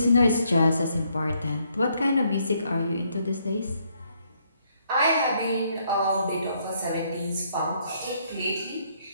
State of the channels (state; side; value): inverted; both; correlation -0.71